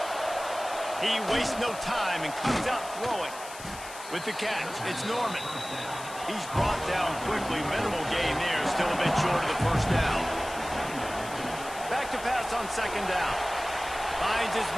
He wastes no time and comes out throwing. With the catch, it's Norman. He's brought down quickly. Minimal gain there. Still a bit short of the 1st down. Back to pass on 2nd down. Finds his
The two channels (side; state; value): left; noise; hiss, 14 dB below the sound